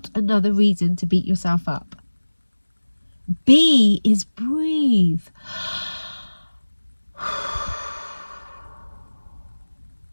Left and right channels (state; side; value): inverted; both; correlation -1.00